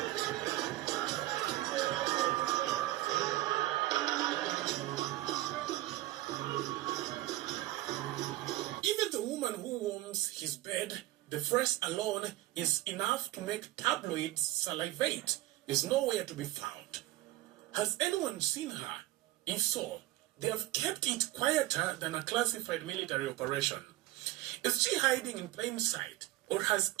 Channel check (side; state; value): left; quieter; 16.9 dB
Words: Even the woman who warms his bed, the phrase alone is enough to make tabloids salivate, is nowhere to be found. Has anyone seen her? If so, they have kept it quieter than a classified military operation. Is she hiding in plain sight? Or has